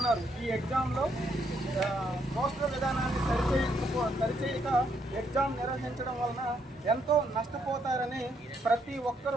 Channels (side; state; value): both; normal; correlation 0.74